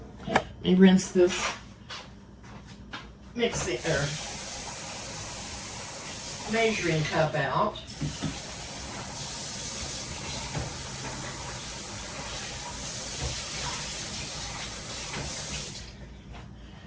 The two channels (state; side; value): identical; both; correlation 1.00